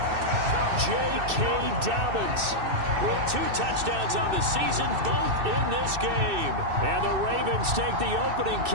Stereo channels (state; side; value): late; left; 2.6 ms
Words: J.K. Dobbins with 2 touchdowns on the season, both in this game. And the Ravens take the opening